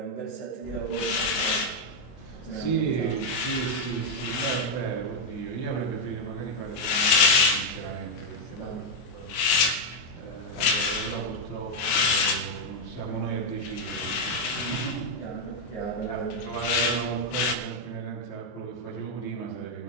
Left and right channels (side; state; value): right; late; 24 ms